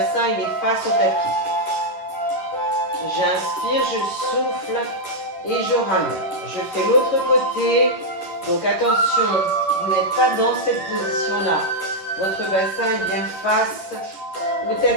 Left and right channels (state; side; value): late; right; 11 ms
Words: il est face au tapis. J'inspire, je souffle. Et je ramène. Je fais l'autre côté. Donc attention, vous n'êtes pas dans cette position-là. Votre bassin est bien face au